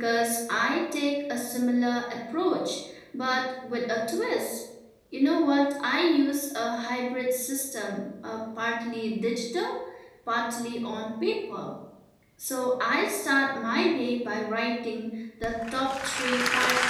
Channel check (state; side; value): identical; both; correlation 1.00